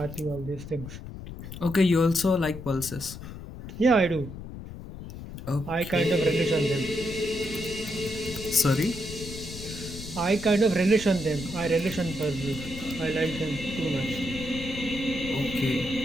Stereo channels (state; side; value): noise; left; rumble, 11 dB below the sound